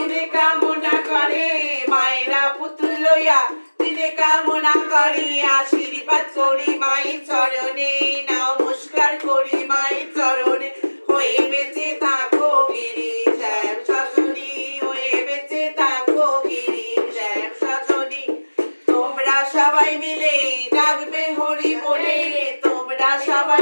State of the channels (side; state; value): both; inverted; correlation -1.00